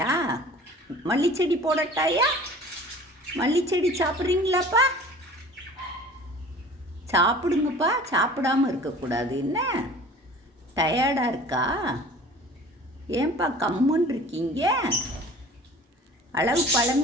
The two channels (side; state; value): both; normal; correlation 0.45